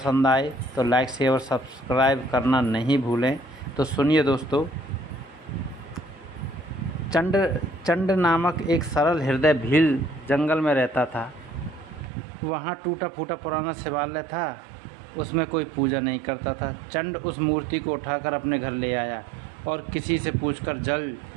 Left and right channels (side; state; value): left; drops out; at 12.1 s